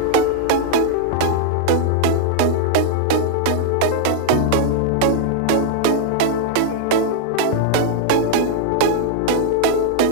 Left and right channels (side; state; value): both; different; correlation -0.01